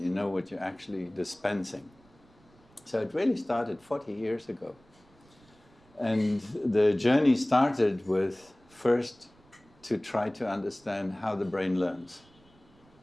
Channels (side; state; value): right; noise; rumble, 29 dB below the sound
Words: you know what you're actually dispensing. So it really started 40 years ago. And the journey started with first to try to understand how the brain learns.